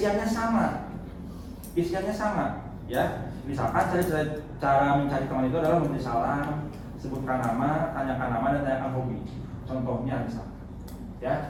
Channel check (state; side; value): identical; both; correlation 1.00